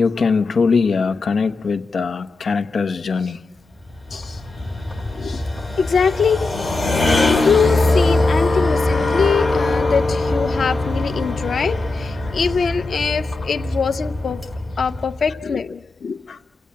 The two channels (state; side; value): quieter; right; 3.6 dB